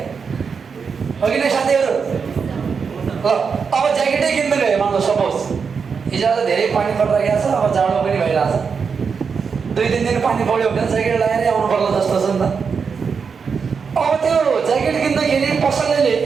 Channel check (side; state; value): left; quieter; 5.8 dB